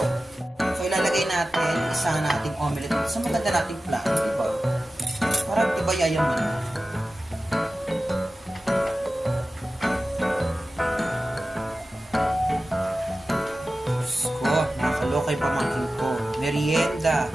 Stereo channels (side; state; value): both; normal; correlation 0.95